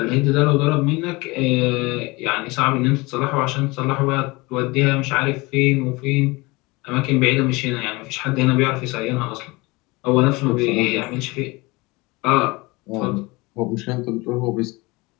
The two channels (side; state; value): right; quieter; 23.8 dB